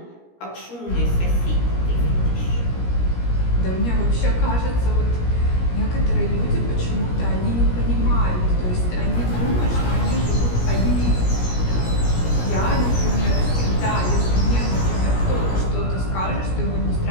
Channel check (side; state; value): right; late; 17 ms